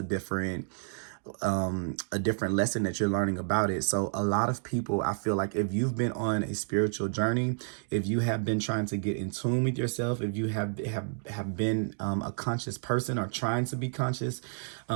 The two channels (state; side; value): silent; left; digital silence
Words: different lesson that you're learning about it. So a lot of people, I feel like if you've been on a spiritual journey, if you have been trying to get in tune with yourself, if you have been a conscious person or trying to be conscious,